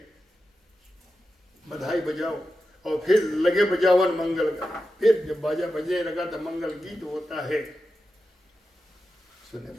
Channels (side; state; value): both; normal; correlation 0.91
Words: बधाई बजाओ। और फिर लगे बजावन मंगल गान। फिर जब बाजा बजने लगा तो मंगल गीत होता है। सुने